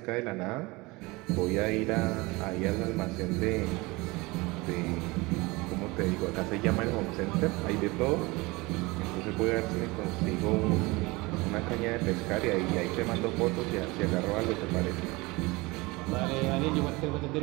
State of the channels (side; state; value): left; quieter; 23.4 dB